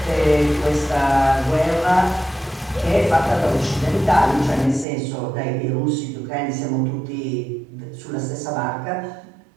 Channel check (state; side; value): drops out; left; at 4.9 s